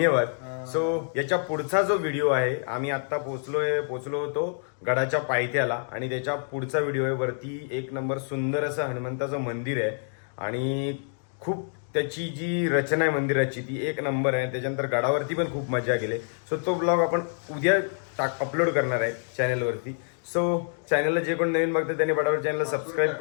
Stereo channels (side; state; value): right; silent; 60 dB below the other